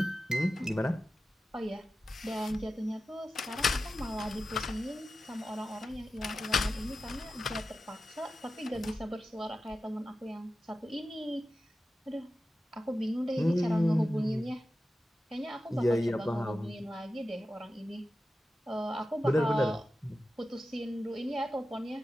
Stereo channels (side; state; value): both; normal; correlation 0.93